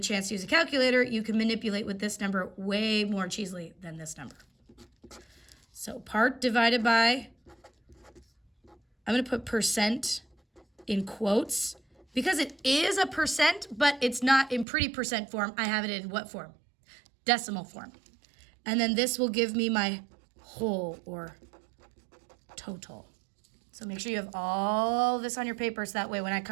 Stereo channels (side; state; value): left; drops out; at 14.7 s